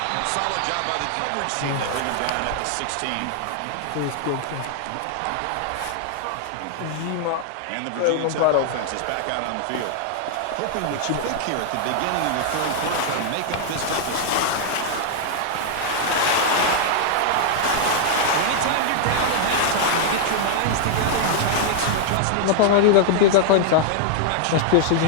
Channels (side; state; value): both; different; correlation 0.00